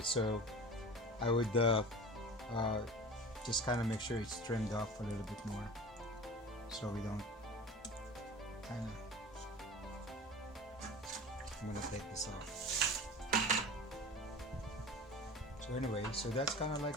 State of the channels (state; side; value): normal; both; correlation 0.36